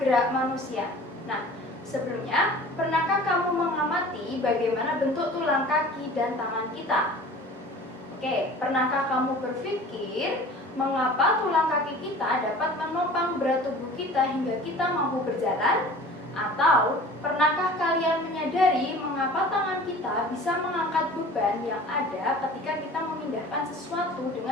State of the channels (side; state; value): both; normal; correlation 0.43